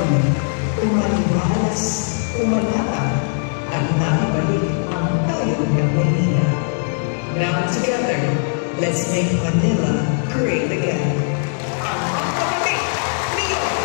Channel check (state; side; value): silent; right; 60 dB below the other